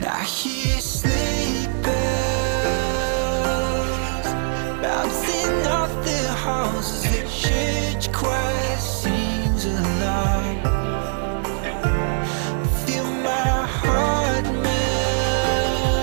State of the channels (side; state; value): left; silent; digital silence